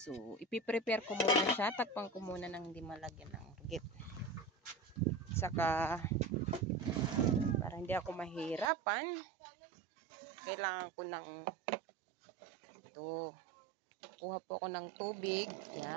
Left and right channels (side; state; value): left; drops out; at 8.7 s